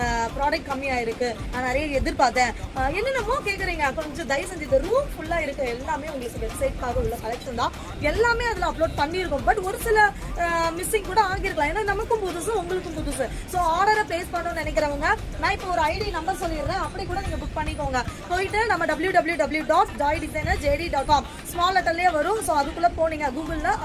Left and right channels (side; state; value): both; identical; correlation 1.00